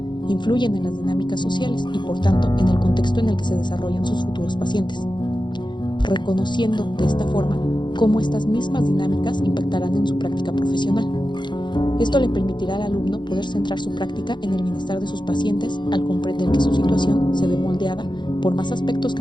influyen en las dinámicas sociales y, por tanto, en el contexto en el que se desarrollan sus futuros pacientes, reconociendo de esta forma cómo estas mismas dinámicas impactarán en su práctica profesional. Esto le permitirá al alumno poder centrar su práctica en el bienestar de sus pacientes al comprender que su situación se ve moldeada por más aspectos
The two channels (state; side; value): late; right; 0.22 ms